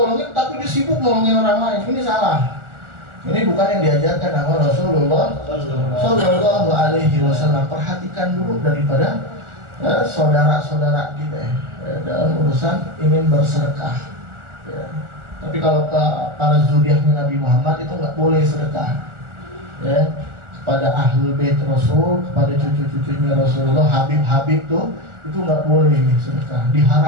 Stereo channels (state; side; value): late; left; 1.4 ms